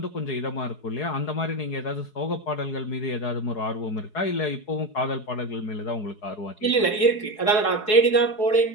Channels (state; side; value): late; right; 4.7 ms